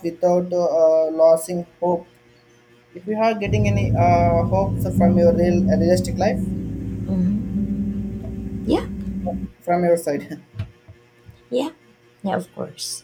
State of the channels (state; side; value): identical; both; correlation 1.00